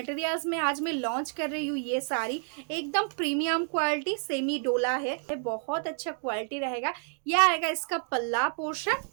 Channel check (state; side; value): silent; left; 58 dB below the other